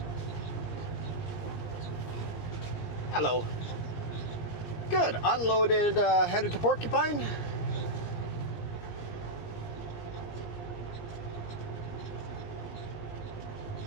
Hello. Good. Unloaded, headed to Porcupine.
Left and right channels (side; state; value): right; late; 20 ms